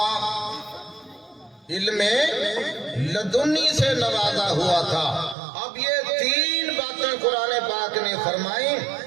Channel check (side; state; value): left; drops out; at 5.4 s